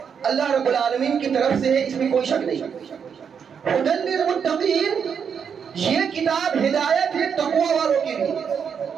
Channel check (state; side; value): quieter; left; 7.0 dB